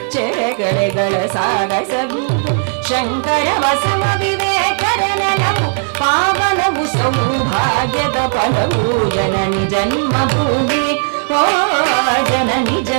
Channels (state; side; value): silent; left; digital silence